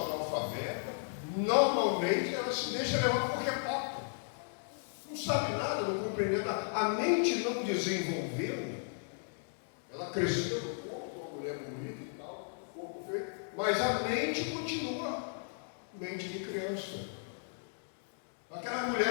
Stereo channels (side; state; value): right; silent; digital silence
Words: analfabeta, normalmente ela se deixa levar por qualquer papo. Não sabe nada, não compreende nada. A mente não desenvolveu. Ela cresceu no corpo, uma mulher bonita e tal, corpo feio, mas a mente continua mente de criança. Aquelas